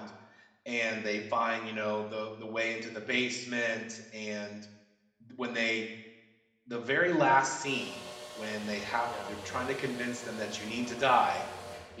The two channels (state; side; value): identical; both; correlation 1.00